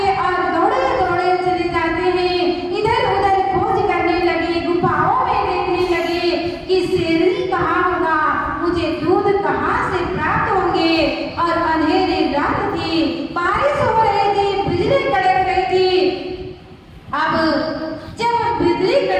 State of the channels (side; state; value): both; identical; correlation 1.00